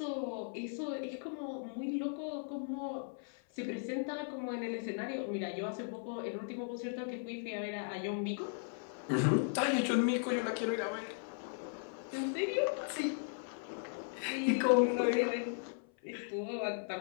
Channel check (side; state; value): right; silent; 53 dB below the other